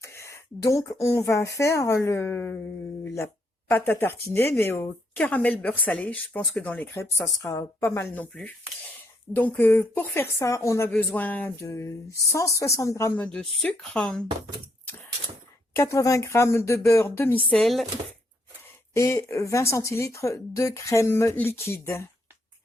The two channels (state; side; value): normal; both; correlation 0.74